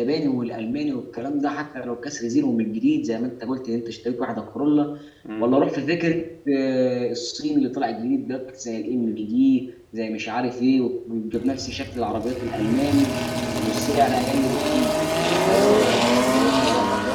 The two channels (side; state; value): both; identical; correlation 1.00